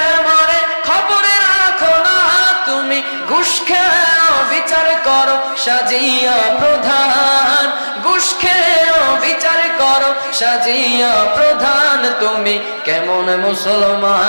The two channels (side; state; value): both; inverted; correlation -1.00